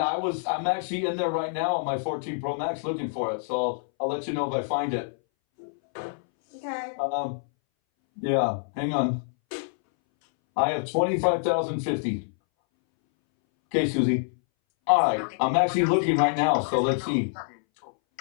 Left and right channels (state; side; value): silent; right; 61 dB below the other